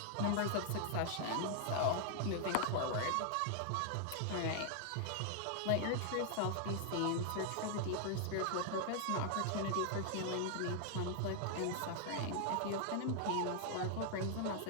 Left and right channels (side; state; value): both; different; correlation 0.00